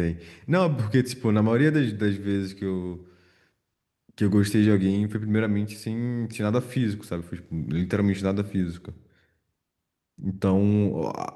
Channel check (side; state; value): both; identical; correlation 1.00